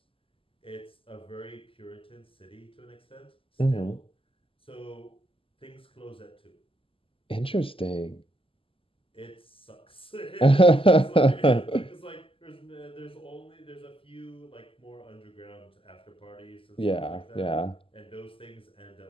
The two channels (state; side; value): late; right; 0.26 ms